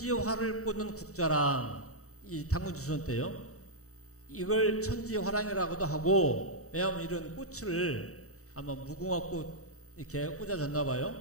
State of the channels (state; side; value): late; right; 0.65 ms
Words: 꽂는 국자랑 이 당군주선 때요. 이걸 천지화랑이라고도 하고 왜냐하면 이런 꽃을 아마 무궁화꽃 이렇게 꽂아줬나